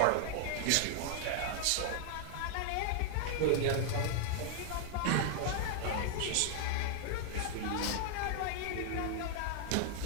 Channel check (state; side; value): different; both; correlation 0.00